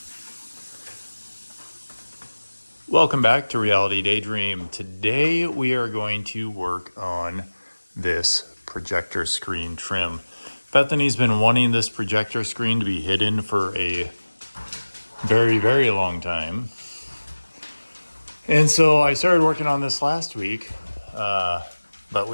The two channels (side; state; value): both; inverted; correlation -1.00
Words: Welcome back to Reality Daydream. Today we are going to work on this projector screen trim. Bethany's been wanting this projector screen to be hidden for a very, very long time. And so I started working on this last week, but